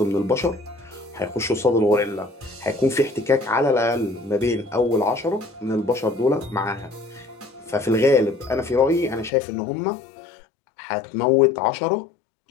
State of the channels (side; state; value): right; drops out; at 9.3 s